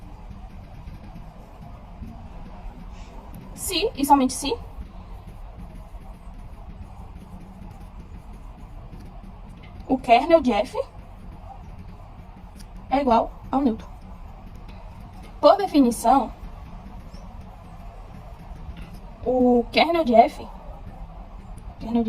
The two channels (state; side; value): identical; both; correlation 1.00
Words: se e somente se o kernel de F é igual ao neutro. Por definição, o kernel de F